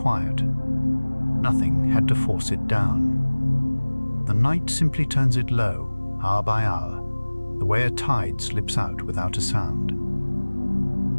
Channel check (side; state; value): both; inverted; correlation -1.00